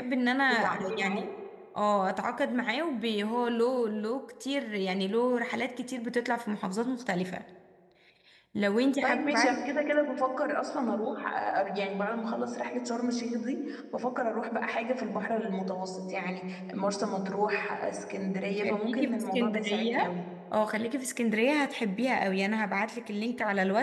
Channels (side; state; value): both; identical; correlation 1.00